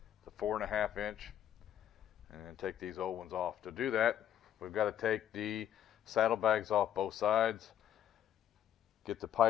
It's a 4.5 inch, and take these old ones off. To do that, we've got to take the saddlebags off both sides, get the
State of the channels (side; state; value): right; quieter; 10.5 dB